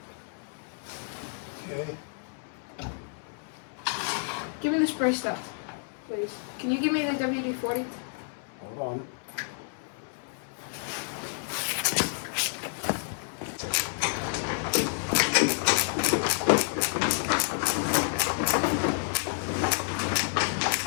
Okay. give me the spray stuff, please. Can you give me the WD-40? Hold on.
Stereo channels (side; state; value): right; silent; 58 dB below the other